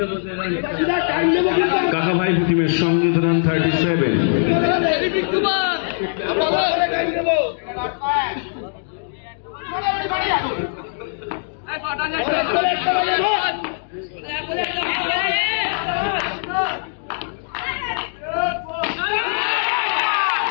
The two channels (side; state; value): right; silent; digital silence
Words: কাকাভাই টিমের সংগৃহীত রান 37।